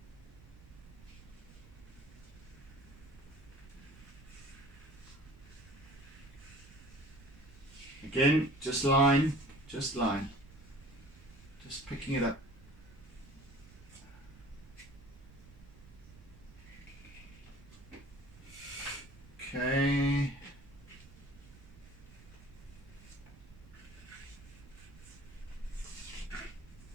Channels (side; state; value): right; noise; rumble, 19 dB below the sound